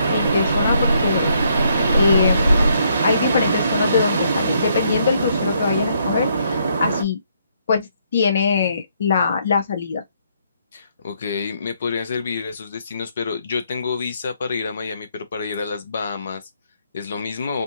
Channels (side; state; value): both; inverted; correlation -0.72